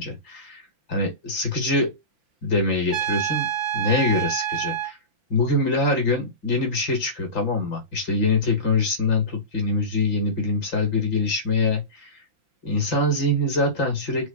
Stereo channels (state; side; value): late; right; 5.8 ms